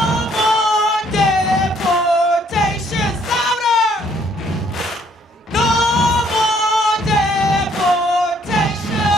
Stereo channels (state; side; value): normal; both; correlation 0.64